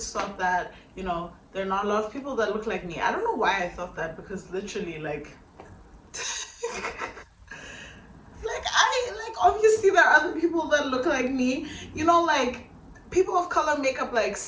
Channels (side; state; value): both; identical; correlation 1.00